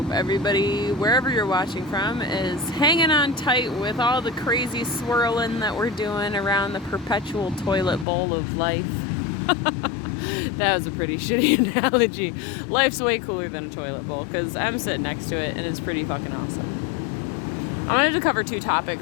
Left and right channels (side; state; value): right; drops out; at 8.1 s